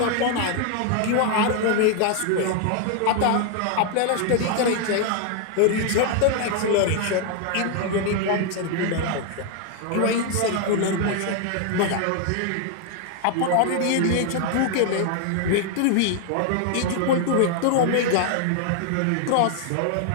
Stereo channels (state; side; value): different; both; correlation 0.00